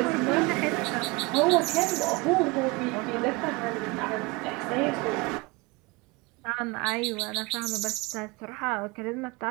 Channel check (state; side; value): quieter; left; 25.1 dB